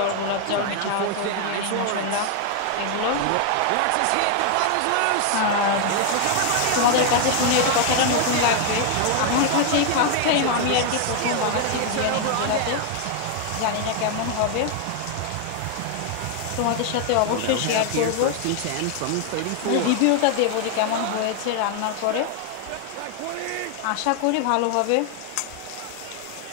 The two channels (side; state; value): both; different; correlation 0.00